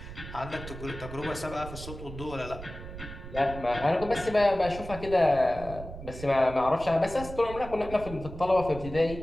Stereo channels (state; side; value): noise; right; rumble, 12 dB below the sound